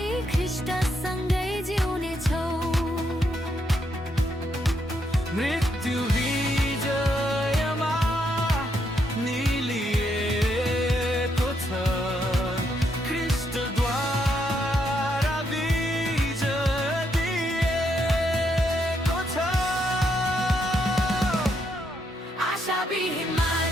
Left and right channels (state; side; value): normal; both; correlation 0.77